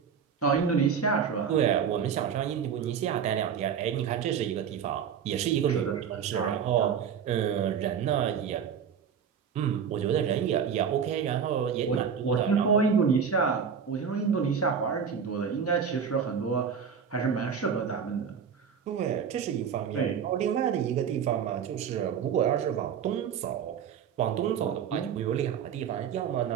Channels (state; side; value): quieter; left; 7.3 dB